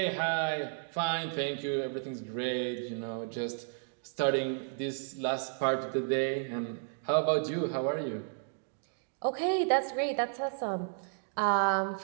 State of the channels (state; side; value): silent; left; digital silence